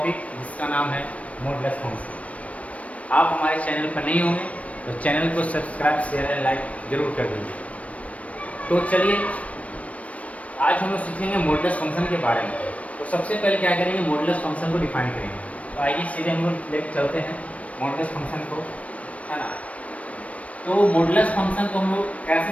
जिसका नाम है मॉडुलस फंक्शन। आप हमारे चैनल पर नहीं होंगे तो चैनल को सब्सक्राइब शेयर एंड लाइक जरूर कर दीजिए। तो चलिए आज हम लोग सीखेंगे मॉडुलस फंक्शन के बारे में। तो सबसे पहले क्या करेंगे, मॉडुलस फंक्शन को डिफाइन करेंगे। तो आइए सीधे हम लोग लेकर चलते हैं मॉडुलस फंक्शन को, है ना। तो मॉडुलस फंक्शन को हम लोग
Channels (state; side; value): late; right; 0.065 ms